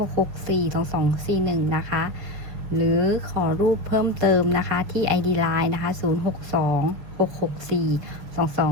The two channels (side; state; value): left; late; 6.4 ms